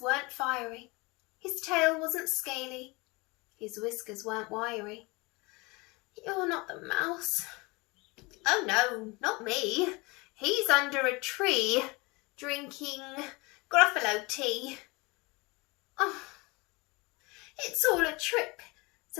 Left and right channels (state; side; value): quieter; right; 25.8 dB